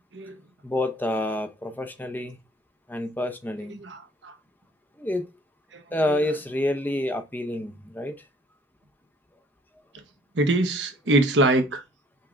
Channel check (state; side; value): normal; both; correlation 0.57